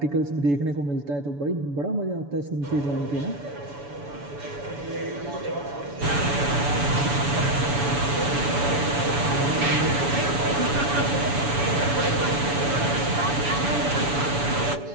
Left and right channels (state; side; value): late; left; 7.0 ms